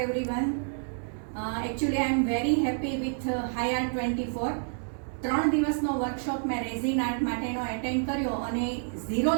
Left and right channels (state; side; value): silent; left; digital silence